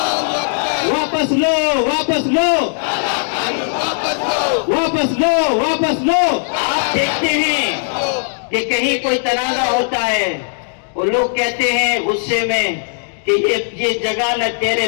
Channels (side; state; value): right; silent; digital silence